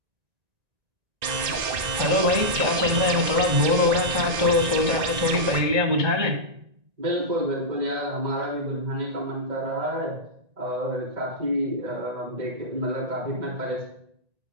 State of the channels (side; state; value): left; late; 1.9 ms